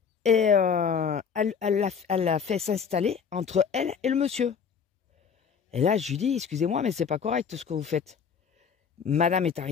Et elle l'a fait s'installer entre elle et le monsieur. Et là, je lui dis, excusez-moi, mais c'est pas correct ce que vous faites. Madame est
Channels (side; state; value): right; quieter; 6.6 dB